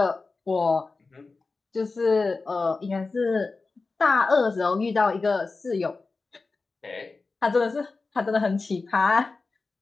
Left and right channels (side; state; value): right; quieter; 3.9 dB